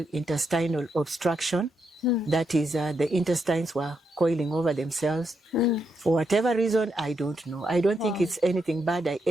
intestinal obstruction. That is, the intestines were coiling over themselves. For whatever reason, I don't know. I don't think it's anything bad I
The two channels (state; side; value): normal; both; correlation 0.81